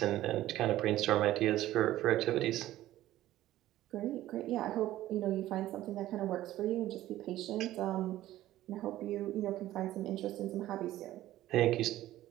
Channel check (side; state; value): left; quieter; 14.6 dB